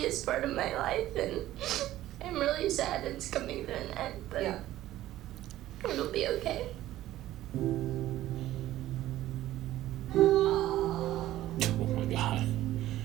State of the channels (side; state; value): left; quieter; 14.5 dB